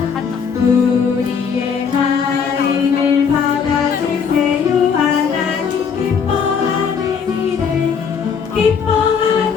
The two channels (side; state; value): right; quieter; 6.5 dB